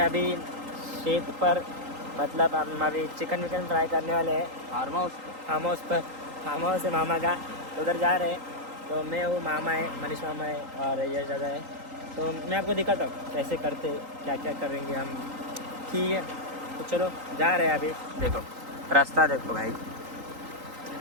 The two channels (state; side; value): late; left; 3.8 ms